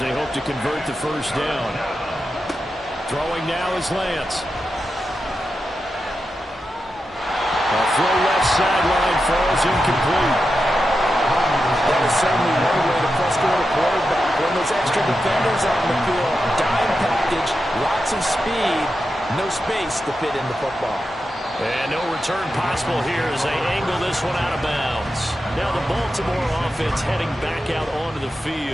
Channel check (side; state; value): both; normal; correlation 0.89